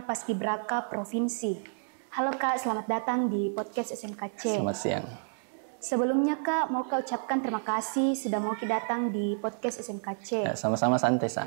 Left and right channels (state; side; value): silent; left; digital silence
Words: Provinsi. Halo Kak, selamat datang di podcast SMKC. Selamat siang. Sebelumnya Kak, mau Kak ucapkan terima kasih sudah mau datang di podcast SMKC. Ya, sama-sama santai